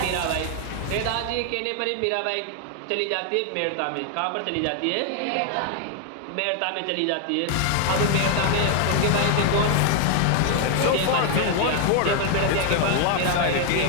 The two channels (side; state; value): both; different; correlation 0.00